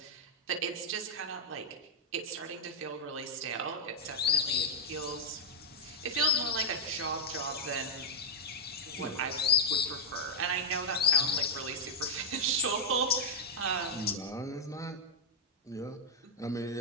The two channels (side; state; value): both; normal; correlation -0.04